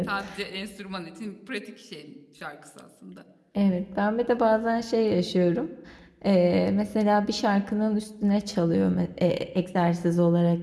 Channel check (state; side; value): identical; both; correlation 1.00